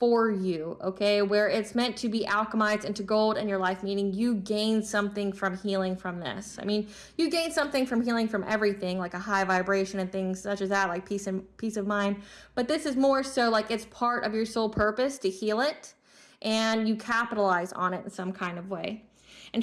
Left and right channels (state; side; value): identical; both; correlation 1.00